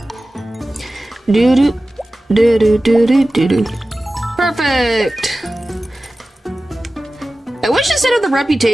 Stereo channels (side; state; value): both; normal; correlation 0.96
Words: Doo-doo. Doo-doo-doo-doo-doo-doo. Perfect! I wish instead of the